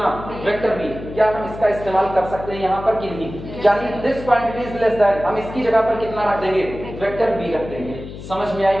वेक्टर b, क्या हम इसका इस्तेमाल कर सकते हैं यहाँ पर कि नहीं, यानी this quantity is less then, हम इसकी जगह पर कितना रख देंगे, वेक्टर b रख देंगे। समझ में आई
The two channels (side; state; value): left; noise; hum, 12 dB below the sound